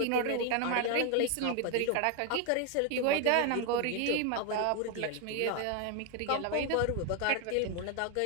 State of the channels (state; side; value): different; both; correlation 0.01